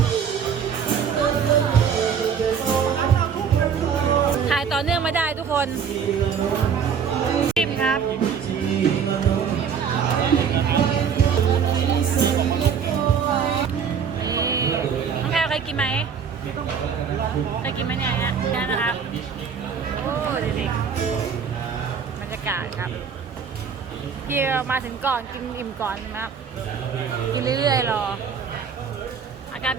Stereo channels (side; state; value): left; quieter; 6.9 dB